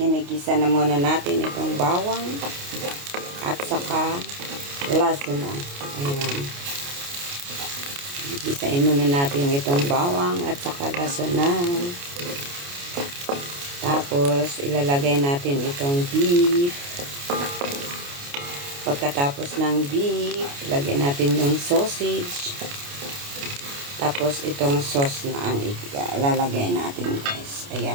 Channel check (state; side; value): late; left; 29 ms